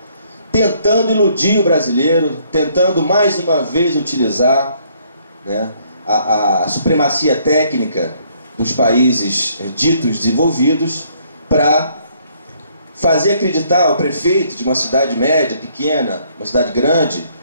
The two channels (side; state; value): both; inverted; correlation -0.66